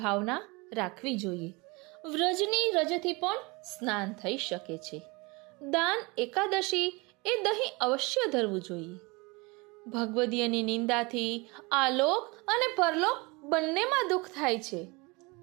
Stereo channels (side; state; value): left; quieter; 26.3 dB